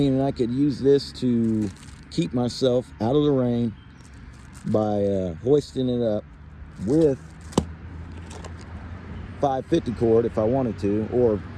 I could use this to keep myself out of the rain by hoisting it up with 550 cord if I wanted to, or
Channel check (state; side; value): identical; both; correlation 1.00